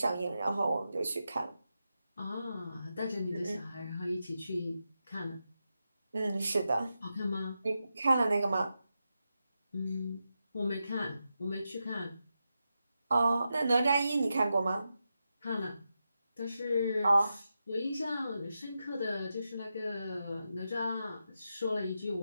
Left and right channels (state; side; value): inverted; both; correlation -0.88